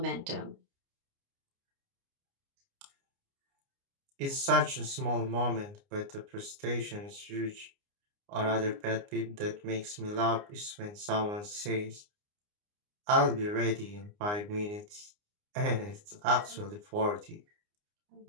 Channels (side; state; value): left; late; 29 ms